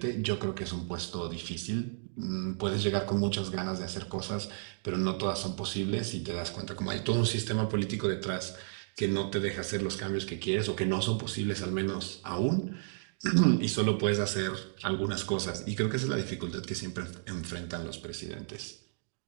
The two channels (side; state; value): left; silent; digital silence